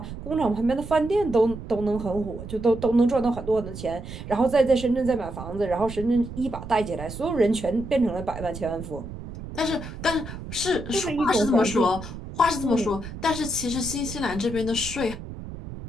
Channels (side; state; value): right; noise; rumble, 10 dB below the sound